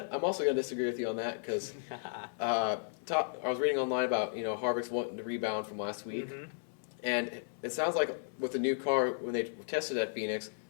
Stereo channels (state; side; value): silent; right; 55 dB below the other